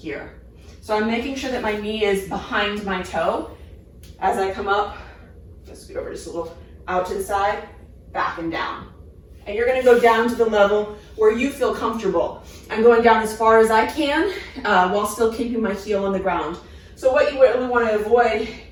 So I'm making sure that my knee is behind my toe as I come up. Let's scoot over just a little, out to the side, back and down. And you're going to go down to the level where you feel comfortable. I'm going down as far as I can while still keeping my heel on the ground. So what you really want to avoid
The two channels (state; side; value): identical; both; correlation 1.00